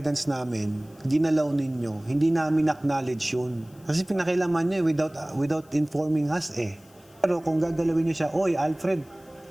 namin, ginalaw ninyo, hindi namin acknowledge yun. Kasi pinakailaman nyo without informing us eh. Pero kung gagalawin nyo siya, oy Alfred,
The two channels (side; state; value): left; noise; hiss, 29 dB below the sound